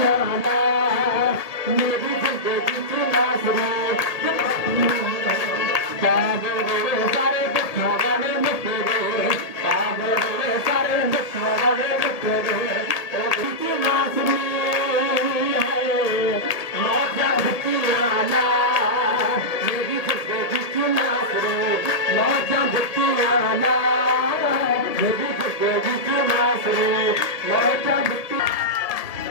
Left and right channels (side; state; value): right; late; 1.7 ms